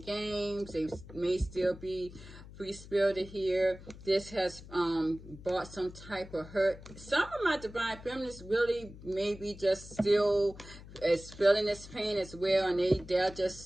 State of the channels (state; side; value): noise; left; hum, 16 dB below the sound